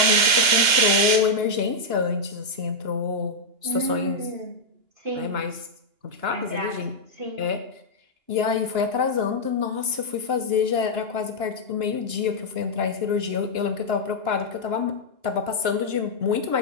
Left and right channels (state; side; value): late; left; 2.9 ms